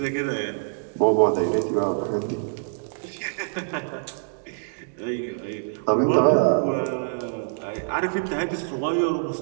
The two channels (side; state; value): left; silent; digital silence